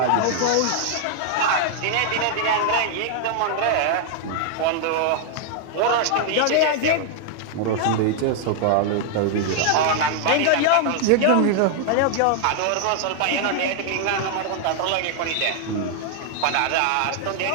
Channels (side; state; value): both; different; correlation 0.00